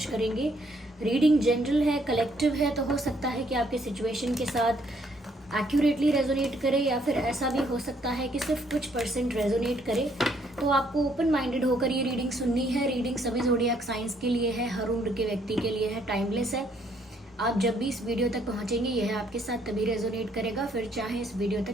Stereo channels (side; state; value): both; normal; correlation 0.68